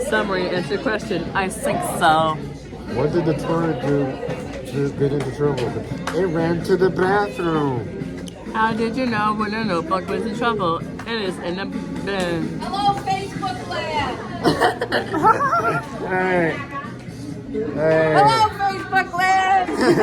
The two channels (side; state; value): both; identical; correlation 1.00